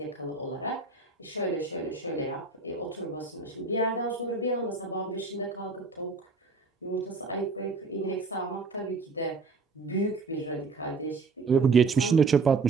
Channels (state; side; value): quieter; left; 4.1 dB